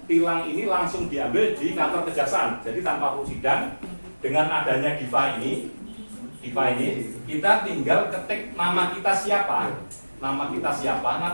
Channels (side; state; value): both; inverted; correlation -1.00